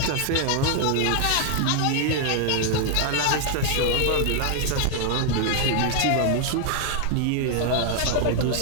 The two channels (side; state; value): both; different; correlation 0.00